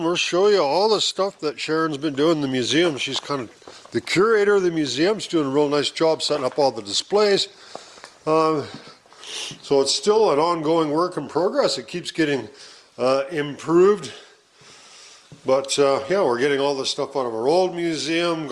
we'll show you all the stuff that Sharon's been doing in the museum. She's kind of the curator of the museum. She's doing a real nice job setting up all the displays. So it's still an ongoing work in progress. It keeps getting improved. But yeah, we're getting all this stuff out of our old museum,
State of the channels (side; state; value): both; identical; correlation 1.00